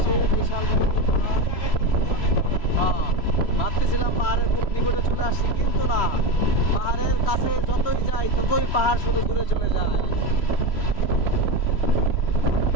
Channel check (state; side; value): late; right; 3.0 ms